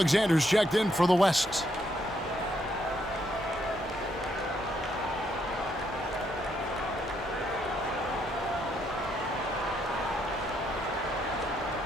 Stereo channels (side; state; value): both; normal; correlation 0.75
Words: checked in for the West.